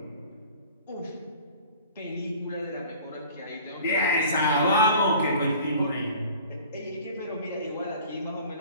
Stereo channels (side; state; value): both; inverted; correlation -0.46